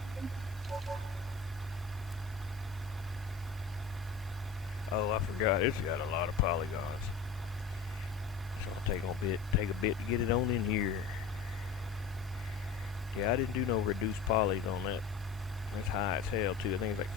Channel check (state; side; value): quieter; right; 5.3 dB